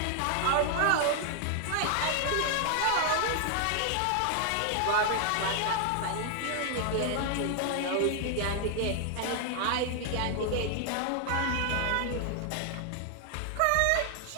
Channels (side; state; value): both; different; correlation 0.00